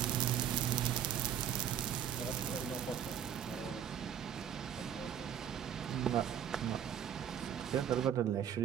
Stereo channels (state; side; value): quieter; left; 9.3 dB